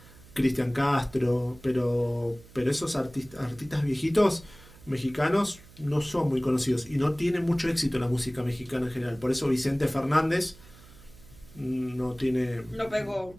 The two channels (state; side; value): noise; right; hum, 22 dB below the sound